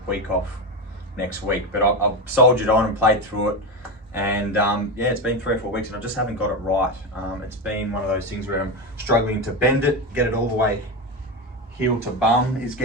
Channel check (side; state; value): both; normal; correlation 0.16